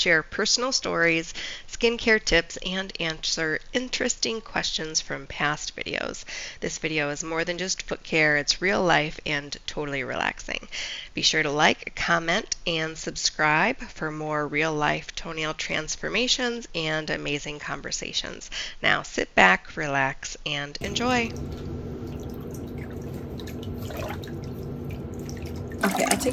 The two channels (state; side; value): identical; both; correlation 1.00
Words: personal stories, skincare tips, and answer interesting questions from past videos. This video is more than just foot care, it's real life and totally relaxing. Be sure to like, comment, and subscribe for more real life toenail transformations and amazing conversations. Now sit back, relax, and enjoy. Okay, I'll